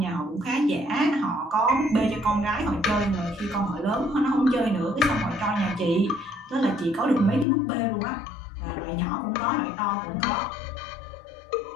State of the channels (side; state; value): right; drops out; at 7.5 s